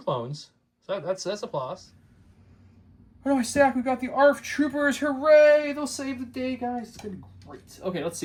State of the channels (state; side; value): identical; both; correlation 1.00